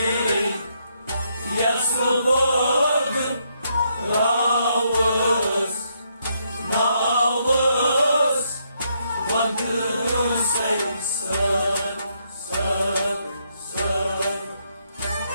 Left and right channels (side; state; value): both; inverted; correlation -0.76